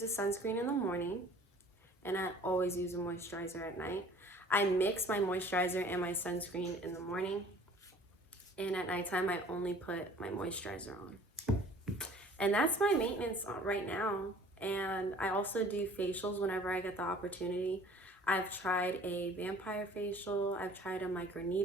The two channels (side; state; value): both; normal; correlation 0.50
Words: a sunscreen in the morning. And I always use a moisturizer at night. I mix my moisturizer and my sunscreen in the morning. And at nighttime, I only put my moisturizer on. And that's my maintenance right now. And I also do facials whenever I get the opportunity. I've tried a vampire facial. I've tried a